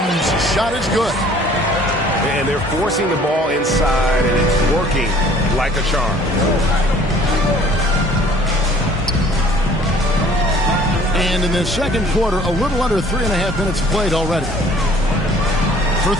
shot is good. And they're forcing the ball inside, and it's working like a charm. And in the second quarter, a little under 3.5 minutes played already. For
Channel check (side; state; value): both; normal; correlation 0.54